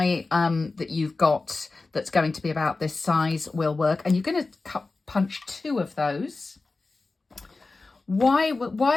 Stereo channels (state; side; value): quieter; right; 3.6 dB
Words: that you've got that's going to be about this size will work. And you're going to punch 2 of those.